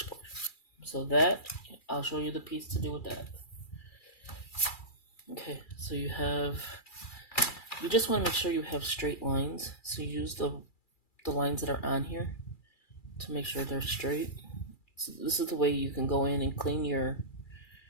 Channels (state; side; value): late; right; 2.3 ms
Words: So that, I'll show you the piece to do with that. Okay, so you just want to make sure you have straight lines. So you use the lines that are on here to make sure they're straight. So this is the way you can go in and clean your